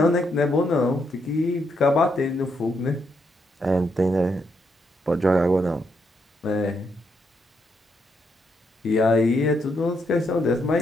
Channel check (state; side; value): normal; both; correlation 0.78